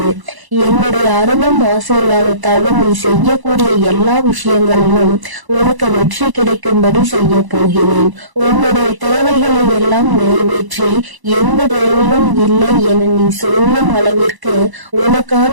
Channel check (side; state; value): left; late; 1.0 ms